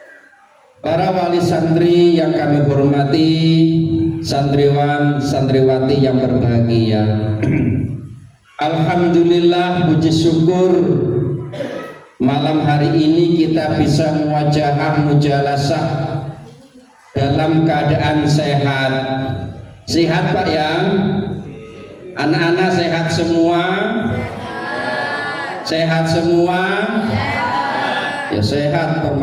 Para wali santri yang kami hormati, santriwan santriwati yang berbahagia, alhamdulillah, puji syukur malam hari ini kita bisa muwajahah mujalasah dalam keadaan sehat. Sehat Pak ya? Anak-anak sehat semua? Sehat semua? Ya sehat,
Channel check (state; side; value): identical; both; correlation 1.00